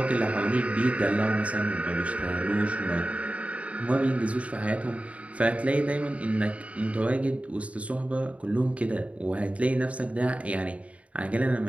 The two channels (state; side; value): late; left; 0.065 ms